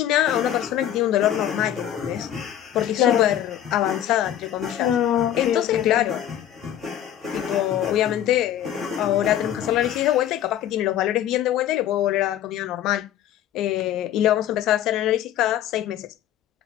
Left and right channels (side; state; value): right; quieter; 11.3 dB